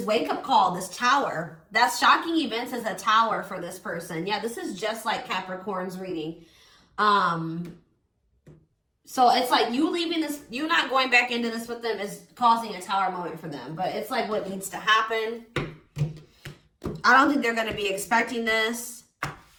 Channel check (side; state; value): both; identical; correlation 1.00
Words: wake-up call, this tower. That's shocking events as a tower for this person. Yeah, this is just like Capricorn's reading. So it's like you leaving this, you not going back into this with them is causing a tower moment for them. But it's like what needs to happen. I don't think they're going to be expecting this.